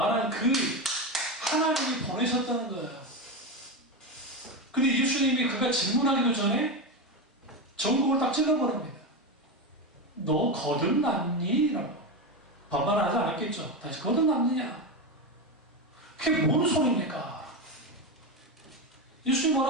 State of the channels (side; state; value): both; normal; correlation 0.15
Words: 그 하나님이 보내셨다는 거예요. 근데 예수님이 그가 질문하기도 전에 전국을 딱 찔러버립니다. 너 거듭났니? 라고. 반말하지 않았겠죠. 다시 거듭났느냐? 그게 뭔 소리입니까? 예수님